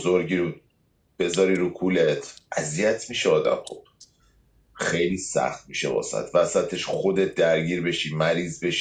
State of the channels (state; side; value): identical; both; correlation 1.00